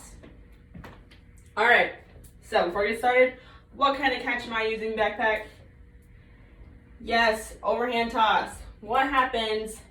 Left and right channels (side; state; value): both; identical; correlation 1.00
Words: All right, so before we get started, what kind of catch am I using, Backpack? Yes, overhand toss. What happens